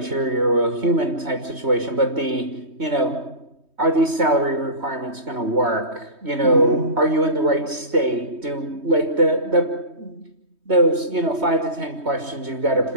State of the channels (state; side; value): late; left; 3.2 ms